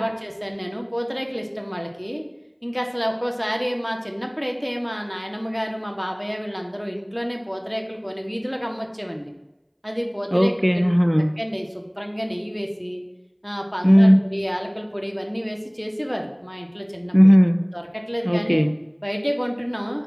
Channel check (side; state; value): both; identical; correlation 1.00